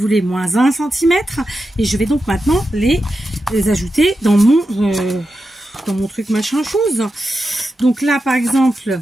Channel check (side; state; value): both; normal; correlation 0.89